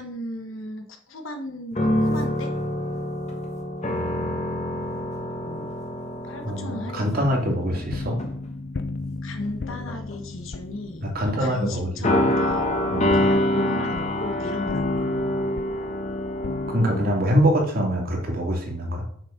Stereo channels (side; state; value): both; normal; correlation 0.61